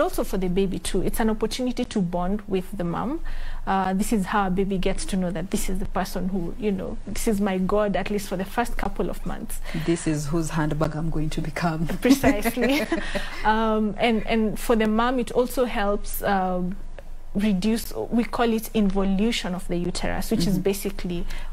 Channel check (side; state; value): both; identical; correlation 1.00